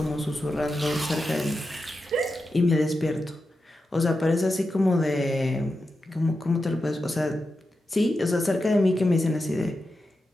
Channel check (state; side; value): normal; both; correlation 0.90